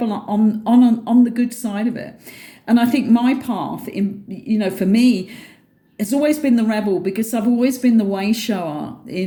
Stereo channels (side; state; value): both; identical; correlation 1.00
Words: on the good side of it. And I think my path, for me, has always been the rebel, because I've always been the way shower